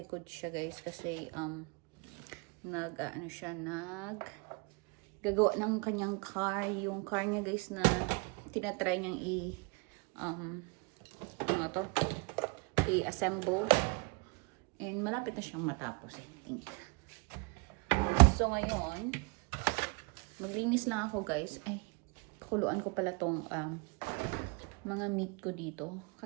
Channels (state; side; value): quieter; left; 31.8 dB